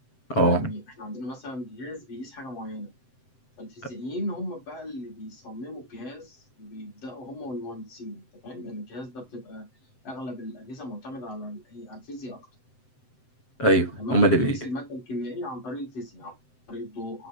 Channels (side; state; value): right; late; 7.8 ms